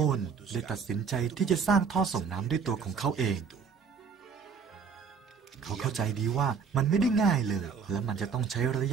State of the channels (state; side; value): quieter; left; 5.9 dB